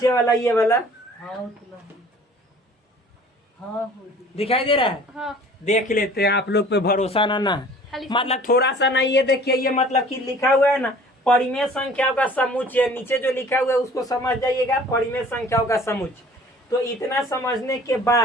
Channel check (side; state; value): both; normal; correlation 0.49